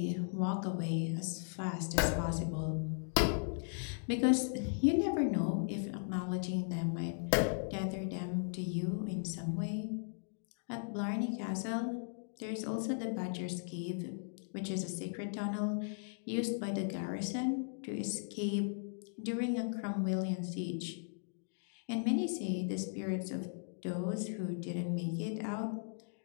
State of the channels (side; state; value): right; silent; digital silence